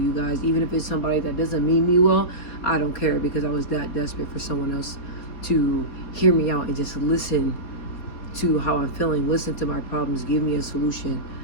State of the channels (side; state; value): right; late; 4.3 ms